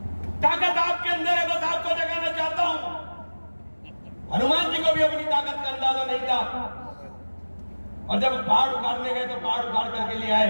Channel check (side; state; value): both; inverted; correlation -1.00